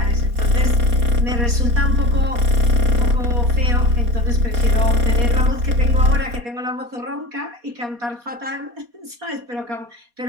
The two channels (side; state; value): left; late; 4.2 ms